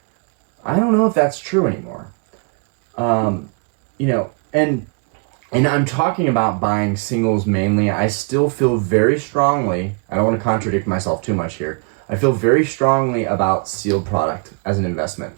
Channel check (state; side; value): quieter; left; 34.9 dB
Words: I don't know if that's true anymore. You know, and I'm talking about buying singles mainly. I still feel very strongly, I don't want to contradict myself too much here. I feel very strongly about sealed product as an investment.